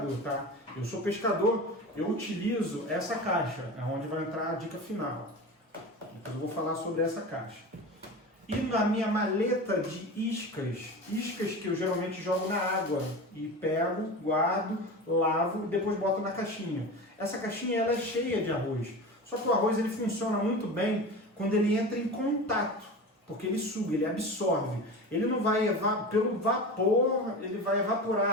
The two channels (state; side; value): normal; both; correlation 0.30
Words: tá? Eu sou pescador, eu utilizo essa caixa, é onde vai entrar a dica final. Depois eu vou falar sobre essa caixa. E na minha maleta de iscas que eu geralmente jogo na água e pego, guardo, lavo e depois boto na caixinha. Essa caixinha ela é cheia de arroz. Só que o arroz ele funciona muito bem quando ele entra em contato, porque ele suga, ele absorve. Ele não vai, pelo vapor, ele vai evaporar